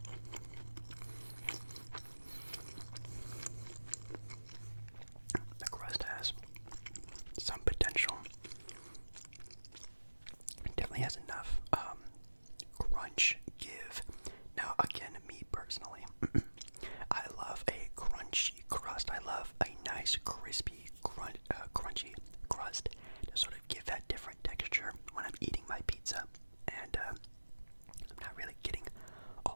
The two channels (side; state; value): both; inverted; correlation -1.00